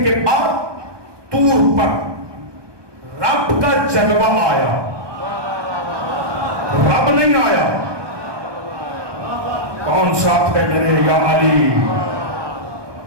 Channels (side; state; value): left; late; 1.2 ms